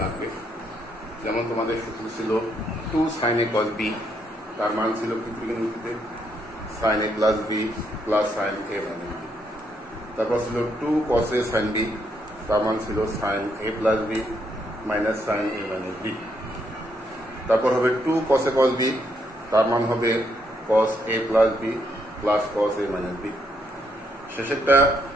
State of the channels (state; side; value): normal; both; correlation 0.75